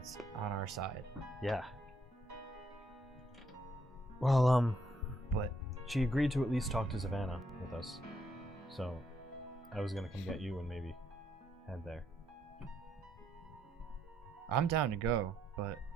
on our side. Yeah. Well, But she agreed to at least talk to Savannah with us. So I was gonna come get you and maybe head there. I'm down to go, but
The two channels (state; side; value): normal; both; correlation 0.73